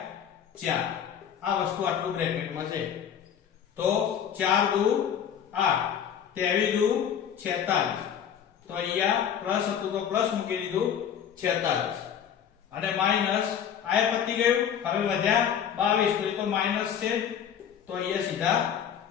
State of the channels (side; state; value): right; quieter; 8.7 dB